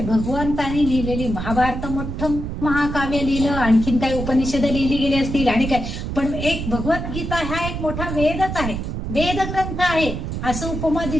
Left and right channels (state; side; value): noise; right; rumble, 5 dB below the sound